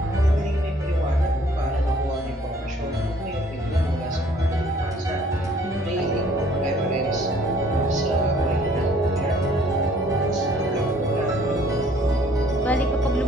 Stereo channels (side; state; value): both; normal; correlation 0.59